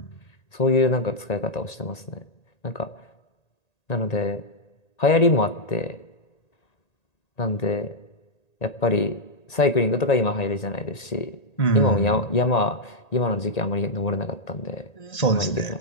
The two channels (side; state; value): right; late; 1.9 ms